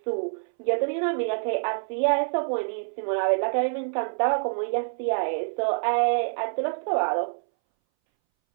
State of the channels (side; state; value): left; silent; 61 dB below the other